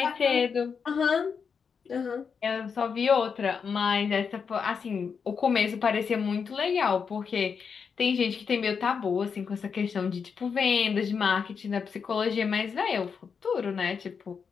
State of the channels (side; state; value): right; quieter; 6.1 dB